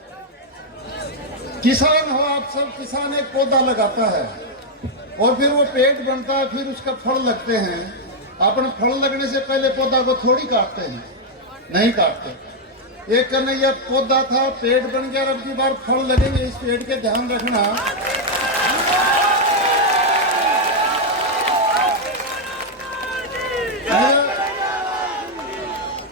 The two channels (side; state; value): both; normal; correlation -0.01